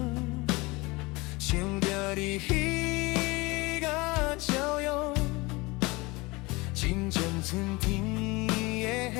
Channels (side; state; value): right; quieter; 23.9 dB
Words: 想着你彼个笑容，亲像春天